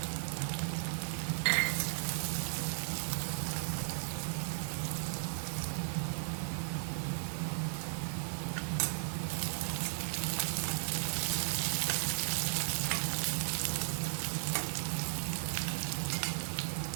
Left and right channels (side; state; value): left; silent; digital silence